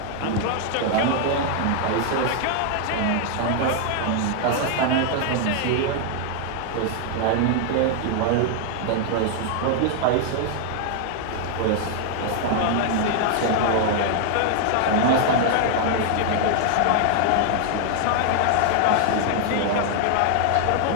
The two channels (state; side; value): different; both; correlation 0.00